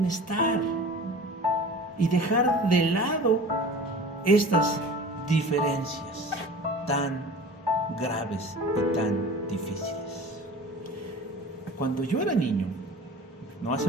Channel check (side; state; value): both; normal; correlation 0.40